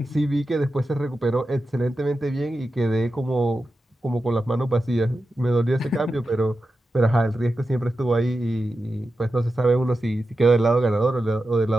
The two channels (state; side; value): normal; both; correlation 0.91